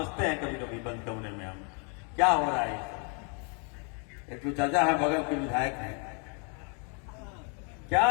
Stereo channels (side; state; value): right; quieter; 37.5 dB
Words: हैं कभी कभी बंद कमरे में। हम क्या हो रहा है। एक तो चाचा है, बगल के विधायक हैं, क्या